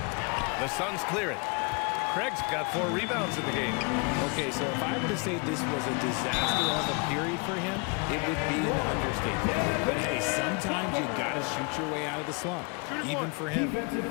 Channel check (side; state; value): right; quieter; 33.0 dB